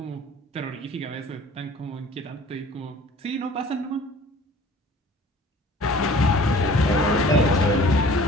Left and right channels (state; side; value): normal; both; correlation 0.49